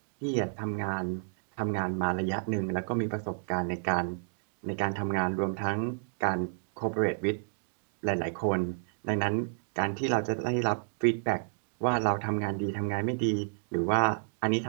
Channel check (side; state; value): left; silent; digital silence